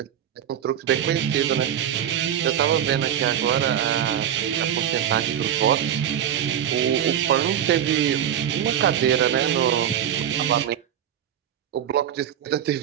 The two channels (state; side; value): quieter; left; 9.9 dB